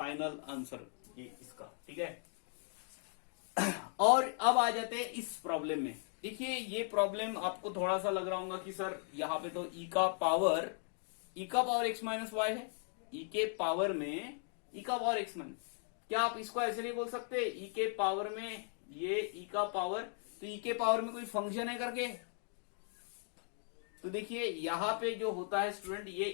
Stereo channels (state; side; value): silent; right; 53 dB below the other